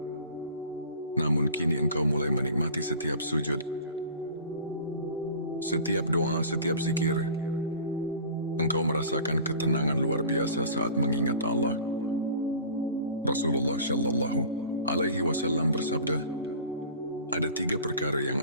namun kini engkau mulai menikmati setiap sujud, setiap doa, setiap zikir. Engkau merasakan ketenangan luar biasa saat mengingat Allah. Rasulullah Shallallahu Alaihi Wasallam bersabda, ada 3 perkara yang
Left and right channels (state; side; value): inverted; both; correlation -0.41